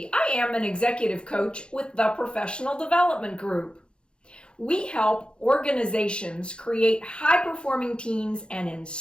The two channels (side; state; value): right; late; 0.054 ms